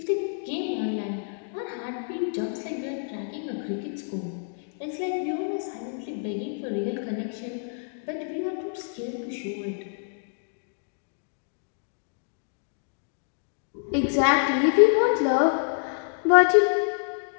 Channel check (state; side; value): silent; right; digital silence